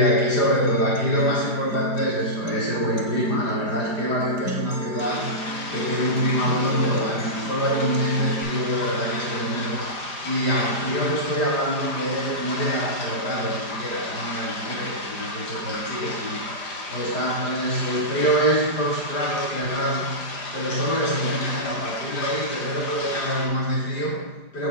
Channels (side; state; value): right; late; 4.9 ms